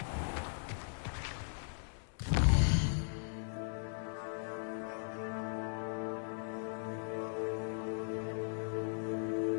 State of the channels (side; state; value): right; silent; digital silence